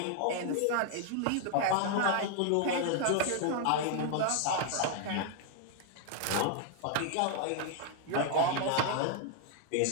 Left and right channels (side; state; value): both; different; correlation 0.00